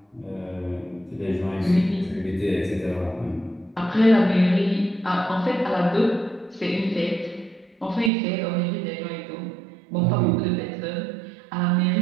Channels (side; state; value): left; drops out; at 8.1 s